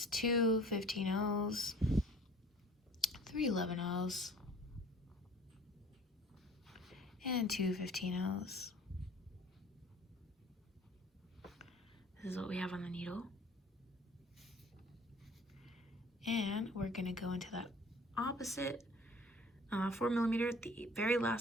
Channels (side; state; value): both; normal; correlation 0.49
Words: 2 15-0s, 3 11-0s, and 2 15-0s. This is what we have on the needle. And we're gonna go into that opposite 4mm, the very